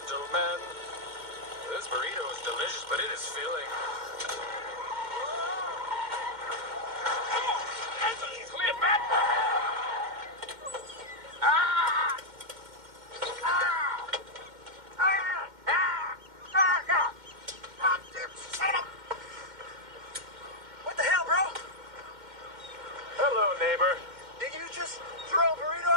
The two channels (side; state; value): left; late; 2.1 ms